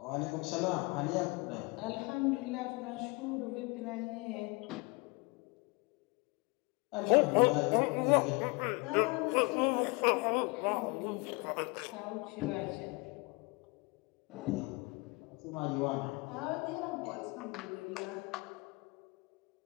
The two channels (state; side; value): quieter; right; 27.9 dB